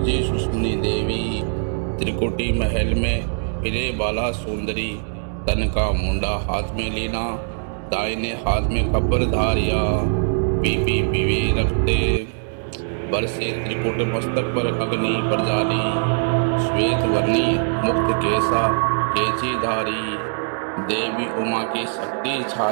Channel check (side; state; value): left; silent; digital silence